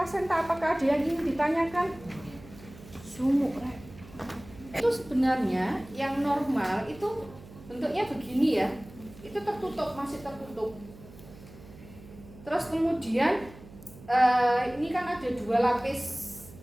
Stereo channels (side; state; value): right; noise; hum, 19 dB below the sound